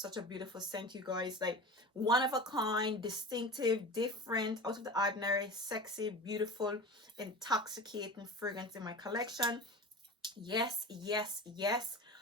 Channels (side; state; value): both; normal; correlation 0.32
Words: a beautiful scent, you guys. Like, one of a kind, distinctive, different, out of the ordinary, sexy, beautiful, intoxicating fragrance in my collection. Yes, yes, yes.